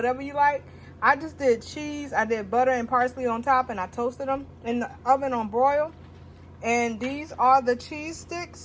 you like. I just did cheese. I did butter and parsley on top. And I toasted them in the oven on broil. And these are the cheese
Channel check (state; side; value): identical; both; correlation 1.00